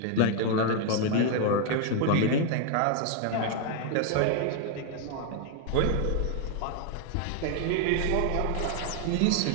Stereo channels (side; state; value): both; different; correlation 0.00